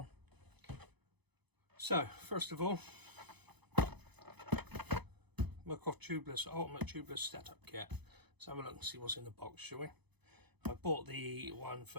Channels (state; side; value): late; left; 0.99 ms